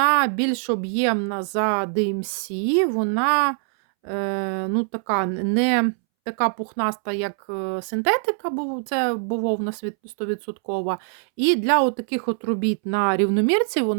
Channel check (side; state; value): left; silent; 63 dB below the other